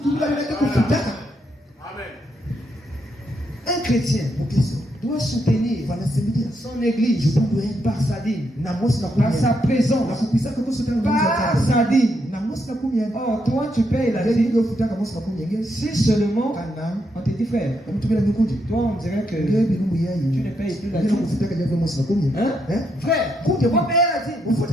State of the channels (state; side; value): normal; both; correlation 0.79